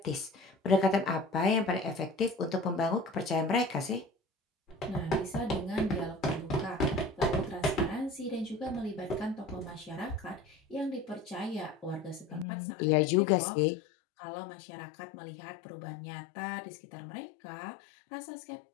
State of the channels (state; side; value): drops out; right; at 12.5 s